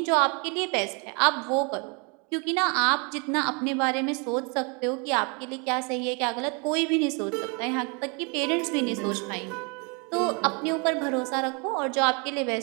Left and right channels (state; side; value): quieter; left; 33.3 dB